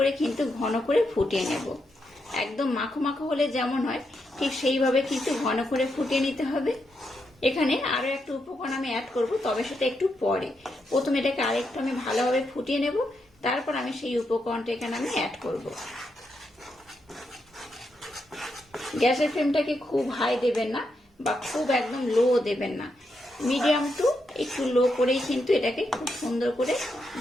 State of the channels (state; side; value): normal; both; correlation 0.82